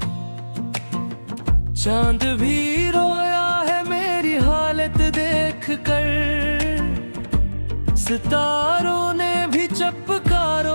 चांद भी रोया है मेरी हालत देख कर, सितारों ने भी चपका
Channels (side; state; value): both; inverted; correlation -1.00